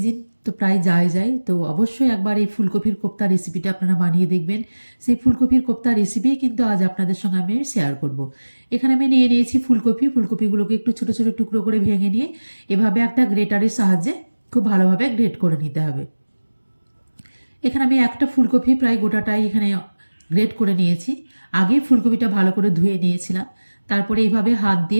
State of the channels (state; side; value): inverted; both; correlation -1.00